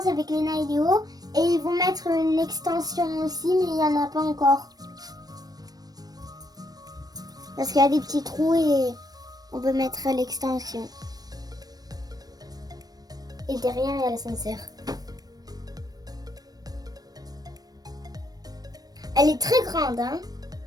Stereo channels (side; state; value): left; late; 0.19 ms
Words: avec Léna et Léo. Et ils vont mettre une extension aussi, mais il n'y en a pas encore. Parce qu'il y a des petits trous et on peut mettre l'extension. Et derrière, il y a l'ascenseur. Elle est très grande, hein.